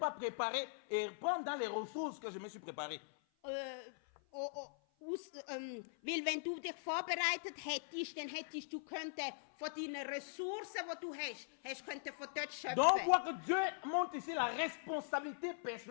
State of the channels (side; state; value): right; silent; 50 dB below the other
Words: préparé et prendre dans les ressources que je me suis préparé. Weil wenn du dich vorbereitet hättest, dann hättest du von deinen Ressourcen, die du hast könnte von dort schöpfen. Donc on voit que Dieu montre ici la responsabilité